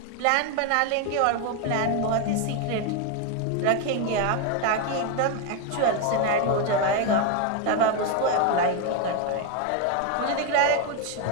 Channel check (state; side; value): different; both; correlation 0.01